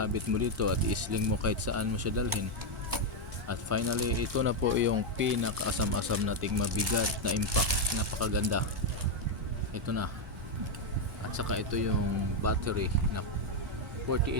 mo dito at isling mo kahit saan mo siya dalhin. At finally, ito na po yung pinakaasam-asam nating mabigat na impact. Napakaganda. Ito na. At saka ito yung battery na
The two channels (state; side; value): normal; both; correlation 0.02